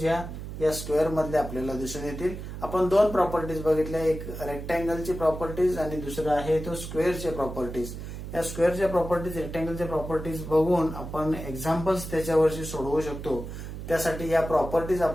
या स्क्वेअर मधल्या आपल्याला दिसून येतील. आपण दोन प्रॉपर्टीज बघितल्या, एक रेक्टँगलची प्रॉपर्टीज आणि दुसरं आहे तो स्क्वेअरचे प्रॉपर्टीज. या स्क्वेअरच्या प्रॉपर्टीज, रेक्टँगलच्या प्रॉपर्टीज बघून आपण एक्झाम्पल्स त्याच्यावरची सोडवू शकतो. त्यासाठी या प्रॉपर्टीज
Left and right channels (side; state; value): right; noise; hum, 9 dB below the sound